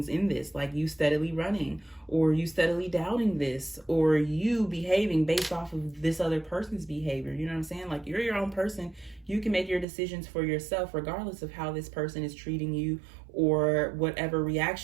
in this? Like you steadily running, or you steadily doubting this, or you behaving based off of this other person's behavior. You know what I'm saying? Like you're your own person. You can make your decisions for yourself, regardless of how this person is treating you or whatever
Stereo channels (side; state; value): left; drops out; at 9.9 s